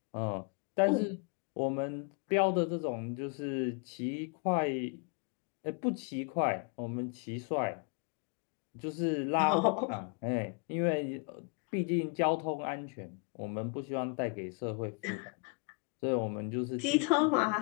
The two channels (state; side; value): quieter; right; 34.6 dB